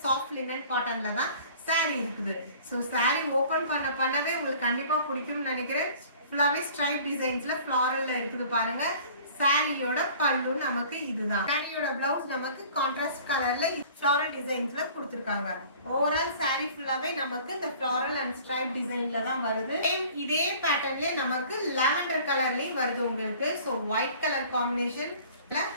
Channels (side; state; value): both; inverted; correlation -0.48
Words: சாஃப்ட் லினன் காட்டன்ல தான் சாரி இருக்குது. ஸோ சாரி ஓபன் பண்ணவே உங்களுக்கு கண்டிப்பா பிடிக்கும்னு நினைக்கிறேன். ஃபுல்லாவே ஸ்ட்ரைப் டிசைன்ஸ்ல ஃப்ளாரல்ல இருக்குது பாருங்க. சாரியோட பல்லு நமக்கு இதுதான். சாரியோட பிளவுஸ் நமக்கு கான்ட்ராஸ்ட் கலர்ல ஃப்ளாரல் டிசைன்ஸ்ல கொடுத்திருக்காங்க. ஓவரால் சாரி ஃபுல்லாவே நமக்கு இந்த ஃப்ளாரல் அண்ட் ஸ்ட்ரைப் டிசைன்ல தான் வருது. இதே பேட்டர்ன்ல நமக்கு லாவெண்டர் கலர்லயும் வருது உங்களுக்கு. ஸோ ஒயிட் கலர் காம்பினேஷன்ல